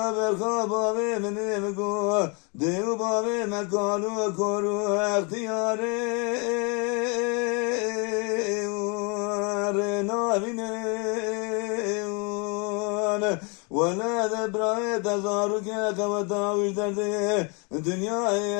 برخواب آوی منی مگو دیو باوی مکانو کرو اختیاری نابینه ولا ذبرای تزارو که قوتاوش درده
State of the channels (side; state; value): right; quieter; 33.1 dB